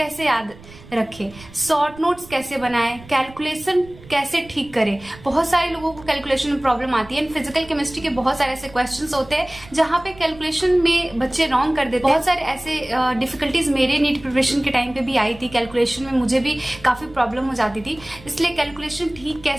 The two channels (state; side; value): noise; right; rumble, 20 dB below the sound